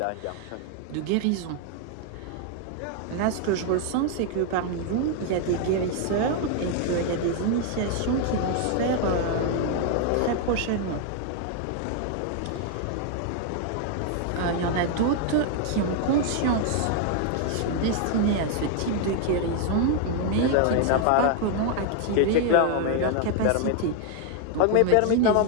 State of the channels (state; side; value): different; both; correlation 0.00